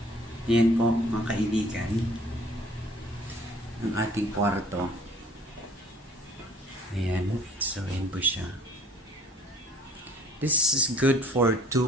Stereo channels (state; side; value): normal; both; correlation 0.53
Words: Yan po mga kaibigan. Ang ating kwarto. Ayan. So yan po siya. This is good for